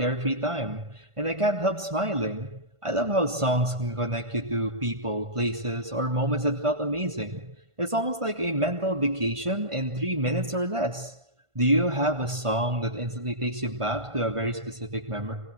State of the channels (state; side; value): late; left; 1.5 ms